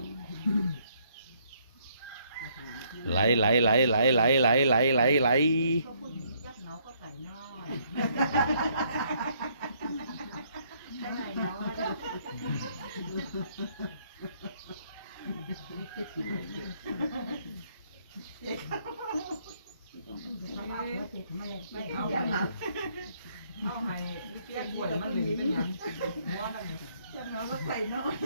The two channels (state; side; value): inverted; both; correlation -0.68